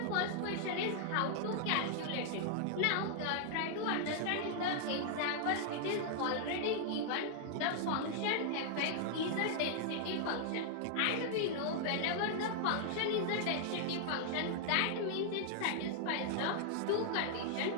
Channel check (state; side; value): different; both; correlation -0.01